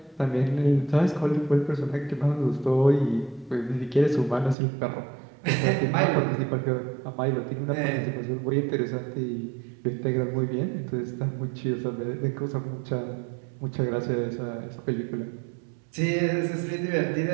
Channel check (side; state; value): left; drops out; at 4.5 s